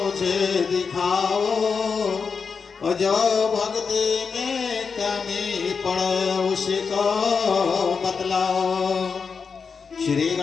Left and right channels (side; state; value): right; quieter; 5.5 dB